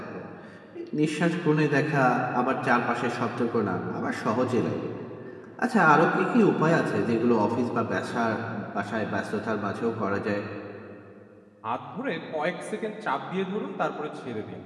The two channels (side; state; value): both; identical; correlation 1.00